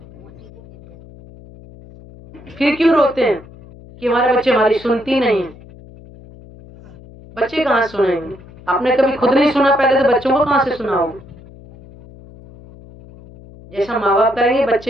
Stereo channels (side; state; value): left; noise; hum, 21 dB below the sound